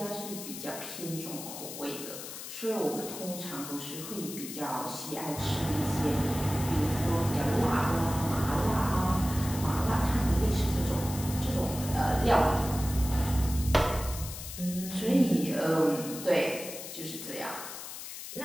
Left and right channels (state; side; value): noise; left; hiss, 10 dB below the sound